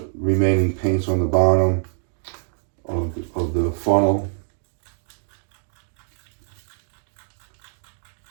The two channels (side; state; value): left; silent; 63 dB below the other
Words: remaining paint's on the bottom of the funnel.